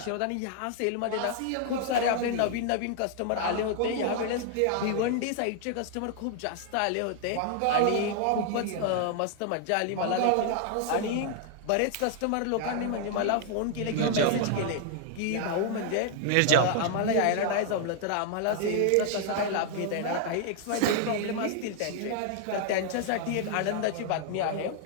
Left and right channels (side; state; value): both; different; correlation 0.00